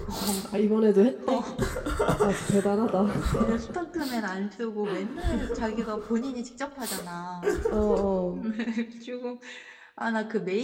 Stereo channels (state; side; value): identical; both; correlation 1.00